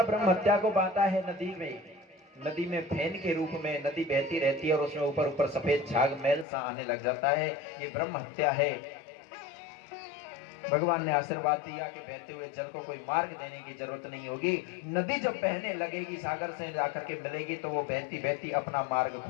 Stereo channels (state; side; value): drops out; right; at 6.5 s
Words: ब्रह्मत्या को बांटा है नदी में। नदी में फैन के रूप में नदी बहती रहती है और उसमें ऊपर ऊपर सफेद झाग मैल सा आने लग जाता है, ये ब्रह्म हत्या है। भगवान ने आशीर्वाद दिया कि बहते हुए जल को कोई मार्ग देने की जरूरत नहीं होगी। नदी जब बहने लगेगी, सागर से जाकर के मिलेगी, तो वो बहती बहती अपना मार्ग